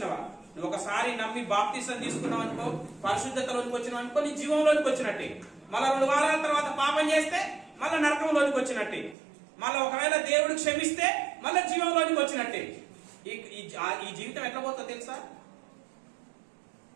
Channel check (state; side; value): drops out; left; at 9.2 s